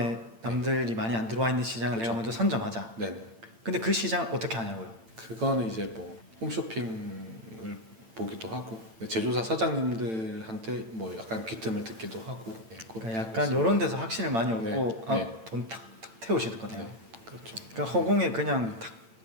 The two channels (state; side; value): late; left; 8.8 ms